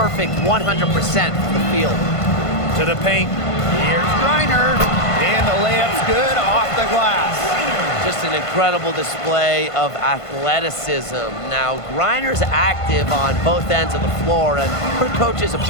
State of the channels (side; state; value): right; late; 1.5 ms